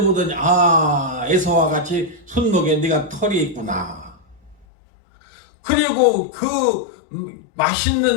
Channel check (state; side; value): drops out; right; at 4.7 s